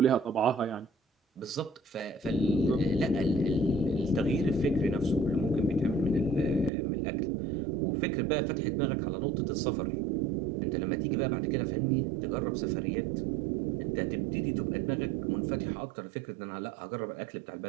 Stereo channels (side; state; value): left; drops out; at 6.7 s